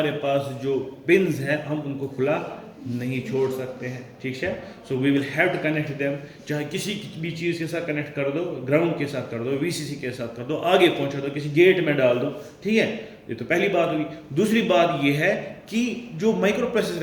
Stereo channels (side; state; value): both; identical; correlation 1.00